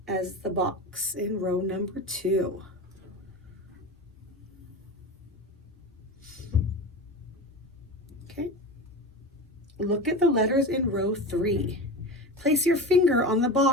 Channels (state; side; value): normal; both; correlation 0.27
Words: as the box in row number 2. Okay. Look at the letters in row 3. Place your finger on the